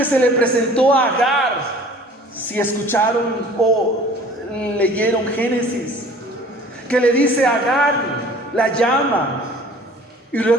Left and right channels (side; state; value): both; normal; correlation 0.48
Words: se le presentó a Agar. Si escucharon o leyeron Génesis, que le dice a Agar, la llama. Y